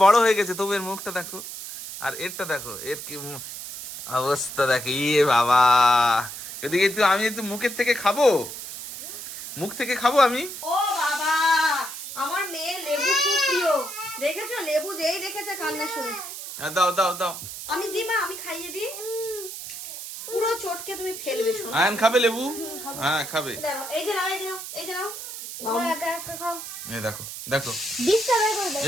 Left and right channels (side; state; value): right; noise; hiss, 9 dB below the sound